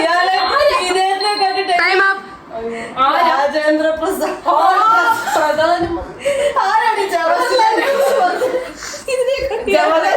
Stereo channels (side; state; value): both; identical; correlation 1.00